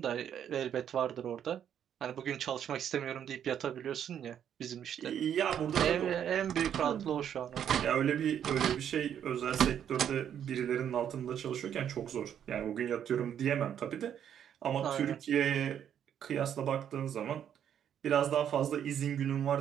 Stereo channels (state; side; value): quieter; left; 9.3 dB